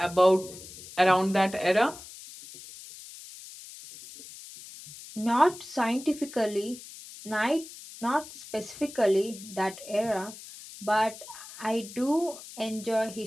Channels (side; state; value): left; noise; hiss, 15 dB below the sound